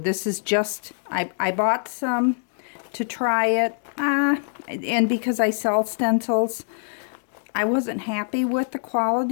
is just, I bought some to try it, and because I sell stencils, I wasn't happy with the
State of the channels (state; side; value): silent; right; digital silence